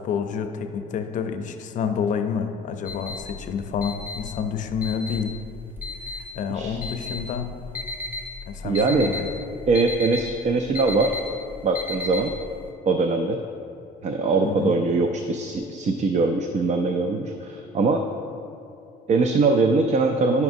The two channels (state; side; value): normal; both; correlation 0.45